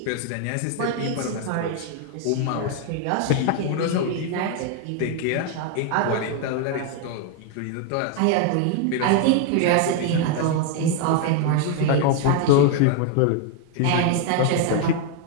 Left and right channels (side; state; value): both; different; correlation 0.01